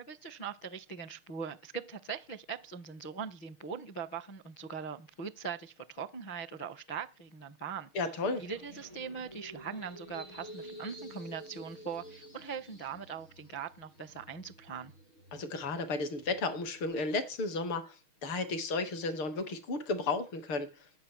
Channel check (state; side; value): late; right; 6.4 ms